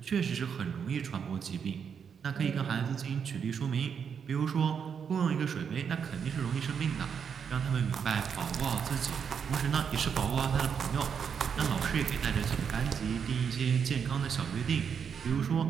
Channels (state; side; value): quieter; left; 7.0 dB